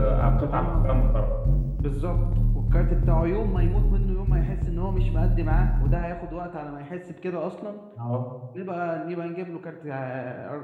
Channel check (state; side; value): identical; both; correlation 1.00